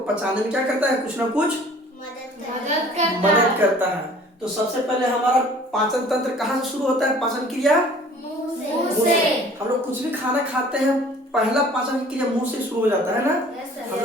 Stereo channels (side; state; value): both; normal; correlation 0.50